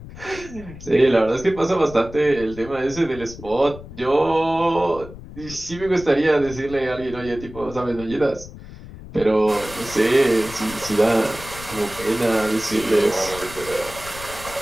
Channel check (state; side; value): noise; left; rumble, 15 dB below the sound